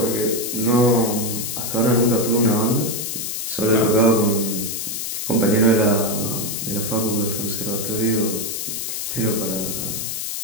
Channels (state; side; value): noise; left; hiss, 4 dB below the sound